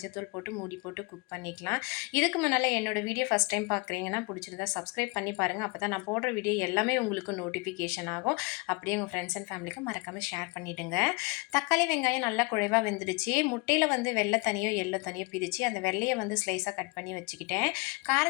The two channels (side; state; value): right; quieter; 28.7 dB